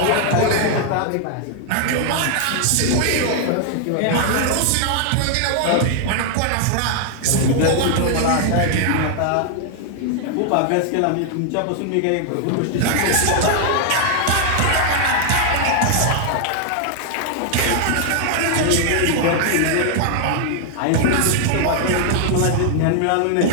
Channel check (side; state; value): both; different; correlation 0.00